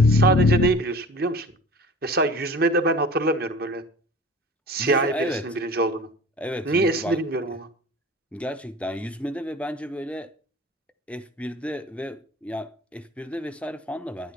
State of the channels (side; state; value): both; normal; correlation 0.42